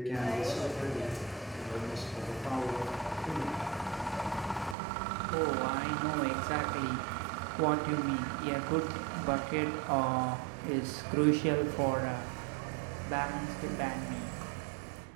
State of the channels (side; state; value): left; drops out; at 4.8 s